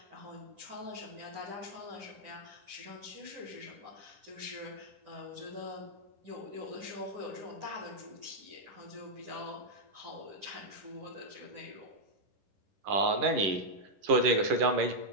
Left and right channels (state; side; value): late; left; 11 ms